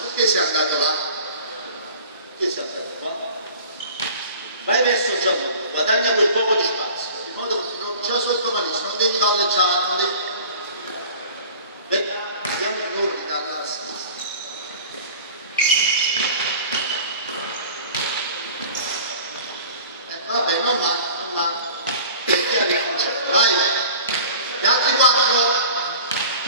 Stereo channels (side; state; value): both; inverted; correlation -0.43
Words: sei andato là? Perché sei andato qua? Vai verso Gianluca, guadagna quel poco di spazio, in modo che ti trovi già sotto malissimo, non devi palleggiare, non devi. Vediamo i giorni dalla sinistra. Vabbè, non male. Vai, gli altri 4.